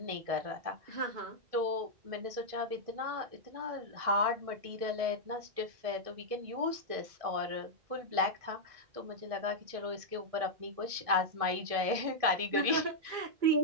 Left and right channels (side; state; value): left; late; 1.6 ms